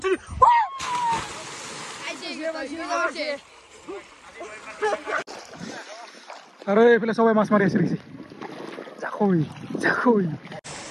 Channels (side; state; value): both; identical; correlation 1.00